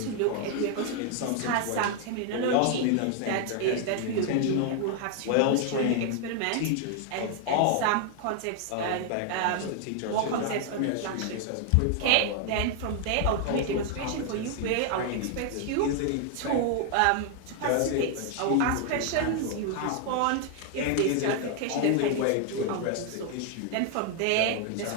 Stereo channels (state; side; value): different; both; correlation 0.00